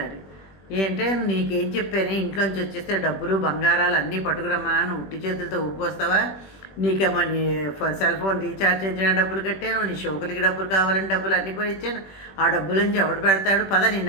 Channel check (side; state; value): right; late; 21 ms